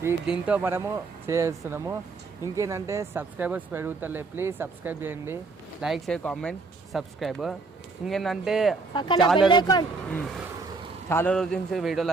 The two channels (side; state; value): left; quieter; 3.9 dB